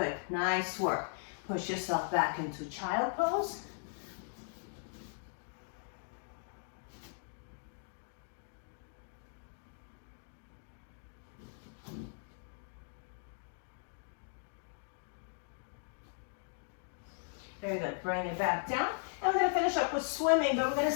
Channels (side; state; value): right; silent; digital silence